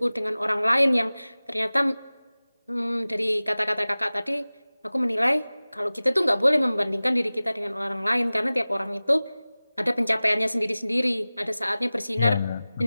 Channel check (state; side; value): inverted; both; correlation -0.98